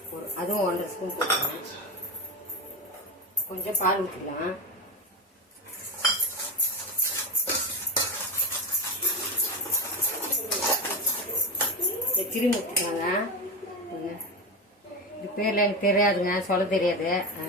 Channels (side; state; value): both; normal; correlation 0.19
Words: அதுவும் 1.5 ஸ்பூன் போட்டுக்கிறேன். கொஞ்சம் பால் ஊற்றிக்கலாம். கிருமி ஊற்றிக்கலாங்க. இது பேரில் எனக்கு தெரியாதுங்க, சொல்ல தெரியாது,